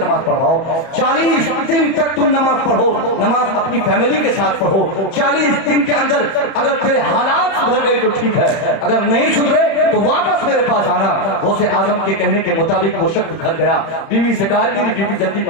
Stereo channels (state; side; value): late; right; 31 ms